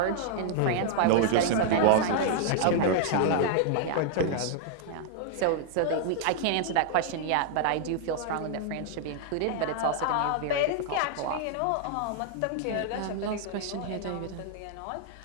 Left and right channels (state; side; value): different; both; correlation 0.00